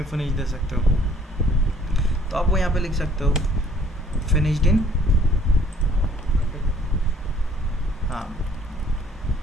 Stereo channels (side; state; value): both; normal; correlation 0.59